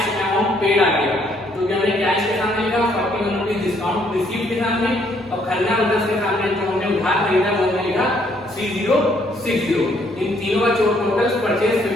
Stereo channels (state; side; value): normal; both; correlation 0.68